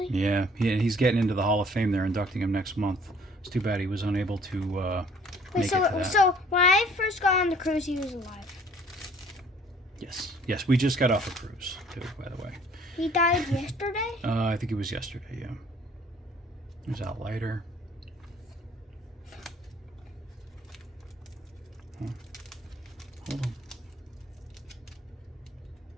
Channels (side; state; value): both; normal; correlation 0.56